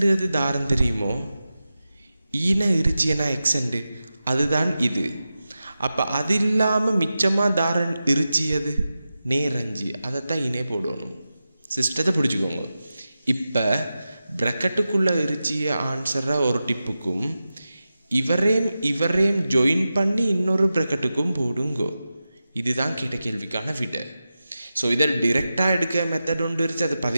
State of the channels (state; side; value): inverted; both; correlation -0.92